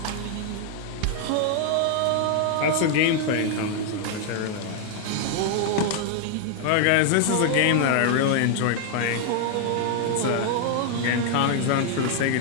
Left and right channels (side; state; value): both; different; correlation 0.00